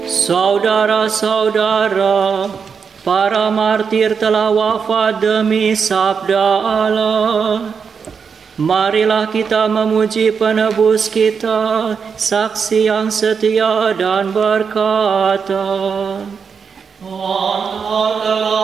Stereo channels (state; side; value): quieter; left; 6.1 dB